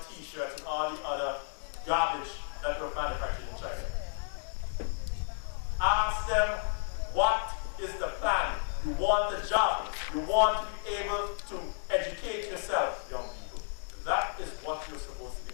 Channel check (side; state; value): right; silent; 56 dB below the other